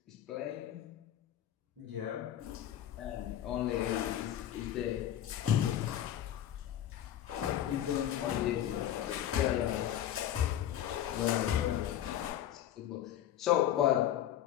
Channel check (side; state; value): right; quieter; 11.4 dB